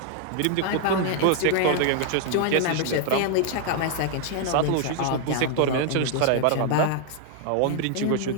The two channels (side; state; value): both; different; correlation 0.00